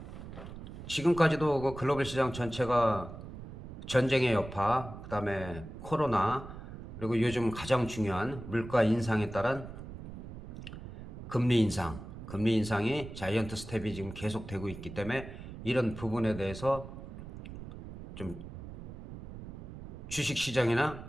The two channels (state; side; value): noise; right; rumble, 12 dB below the sound